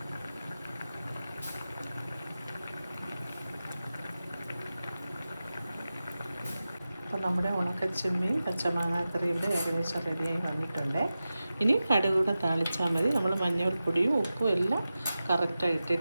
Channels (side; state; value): both; inverted; correlation -0.94